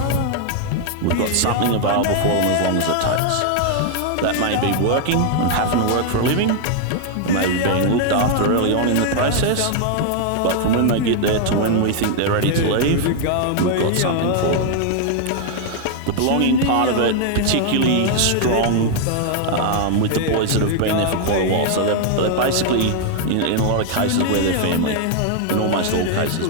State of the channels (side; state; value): both; different; correlation 0.00